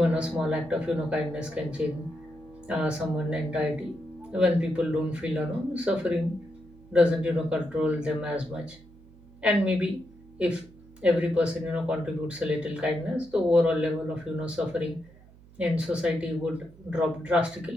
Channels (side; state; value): right; noise; hum, 24 dB below the sound